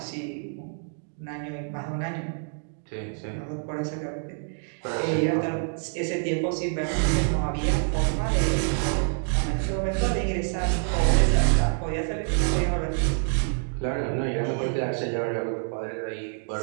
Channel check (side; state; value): left; silent; digital silence